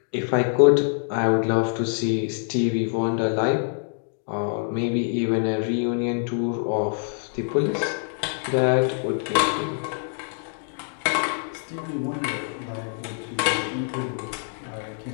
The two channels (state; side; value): silent; right; 59 dB below the other